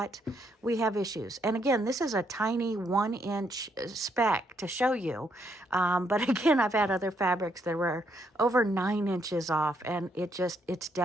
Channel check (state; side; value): normal; both; correlation 0.74